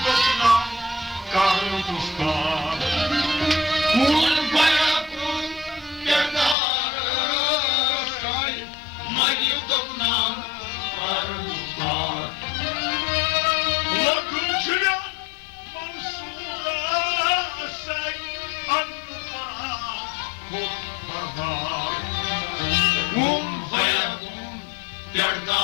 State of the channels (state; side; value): drops out; right; at 6.6 s